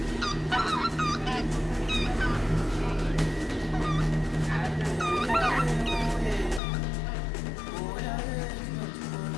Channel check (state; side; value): drops out; right; at 6.6 s